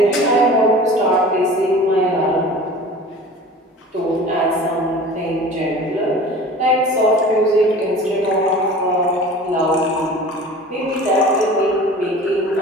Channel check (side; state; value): both; normal; correlation 0.40